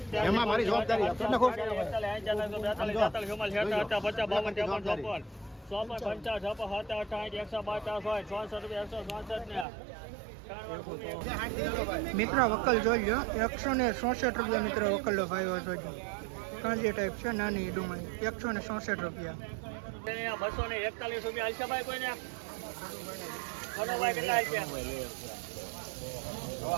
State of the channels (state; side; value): drops out; left; at 9.7 s